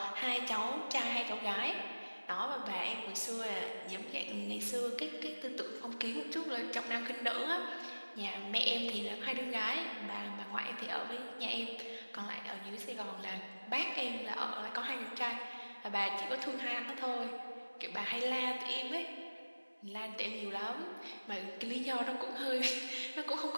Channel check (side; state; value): both; inverted; correlation -1.00